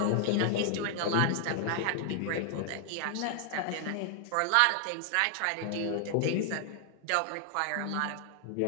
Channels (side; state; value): both; different; correlation 0.00